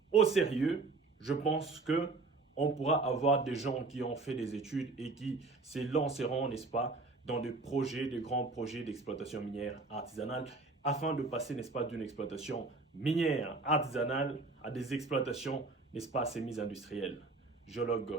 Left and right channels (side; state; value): left; quieter; 3.7 dB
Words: au sérieux, je pense que on pourra avoir des gens qui ont fait des études et qui se lanceront, n'est-ce pas, dans des projets, des grands projets d'exploitation minière artisanale, afin de passer, n'est-ce pas, d'une exploitation minière artisanale à des exploitations, n'est-ce pas, semi-industrielles.